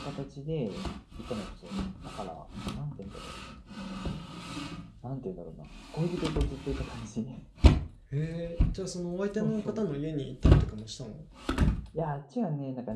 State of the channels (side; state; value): both; identical; correlation 1.00